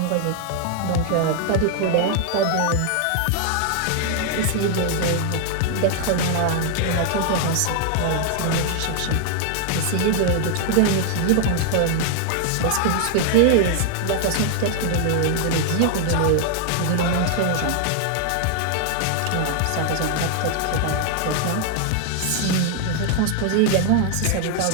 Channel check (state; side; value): different; both; correlation 0.00